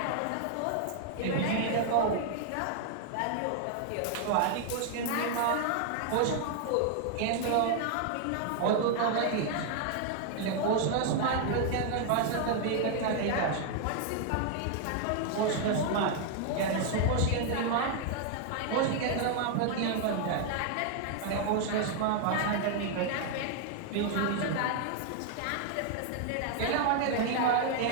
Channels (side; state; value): both; different; correlation 0.00